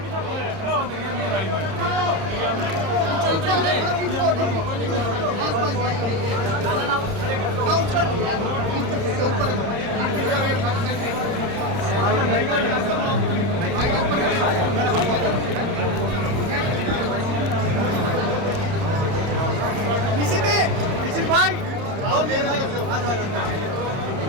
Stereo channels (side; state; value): left; late; 30 ms